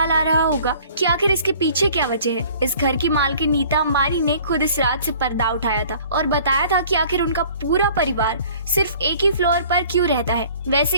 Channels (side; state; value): both; inverted; correlation -0.51